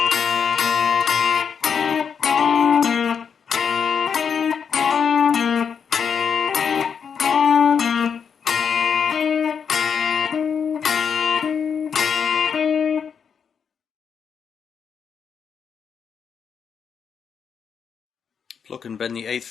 Pluck and bend the 8th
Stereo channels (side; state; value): right; quieter; 6.8 dB